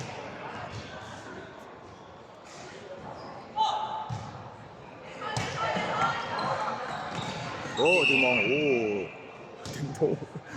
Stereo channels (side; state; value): both; identical; correlation 1.00